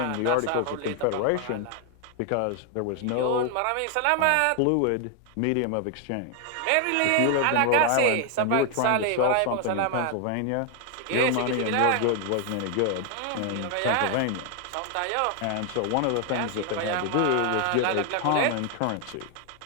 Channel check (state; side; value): different; both; correlation 0.00